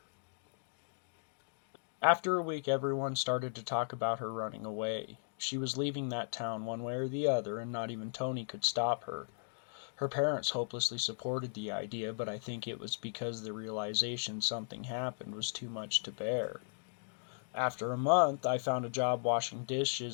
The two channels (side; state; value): right; silent; digital silence